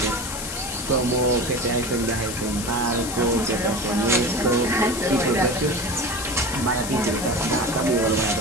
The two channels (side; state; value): left; noise; hiss, 7 dB below the sound